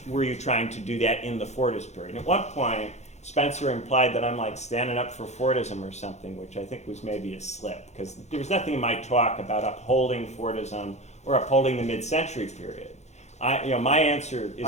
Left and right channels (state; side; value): late; right; 0.33 ms